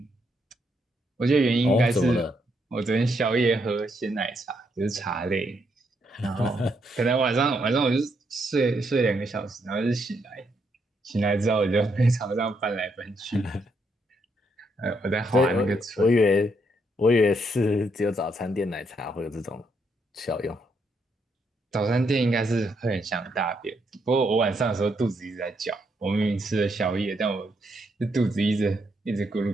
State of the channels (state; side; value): normal; both; correlation 0.76